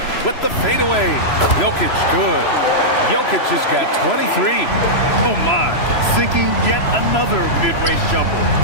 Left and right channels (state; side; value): late; right; 3.0 ms